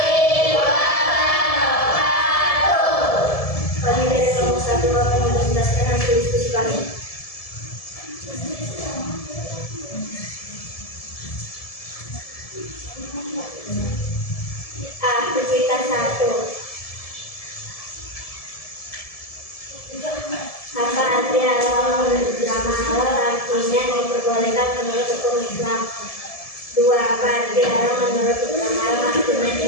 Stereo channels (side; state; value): right; late; 1.7 ms